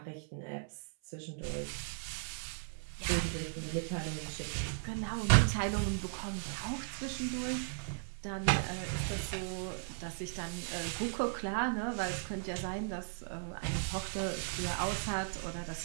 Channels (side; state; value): left; silent; 53 dB below the other